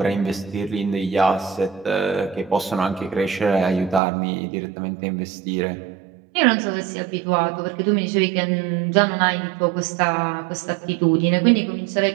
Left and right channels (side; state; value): left; drops out; at 4.0 s